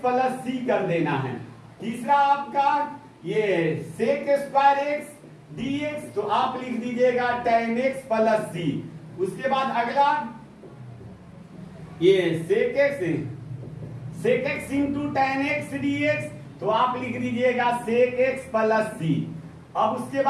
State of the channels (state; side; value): identical; both; correlation 1.00